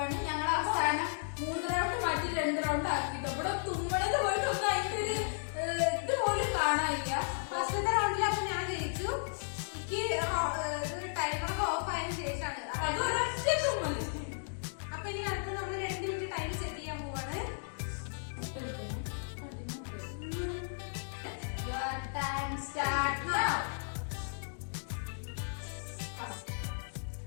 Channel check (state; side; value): silent; right; digital silence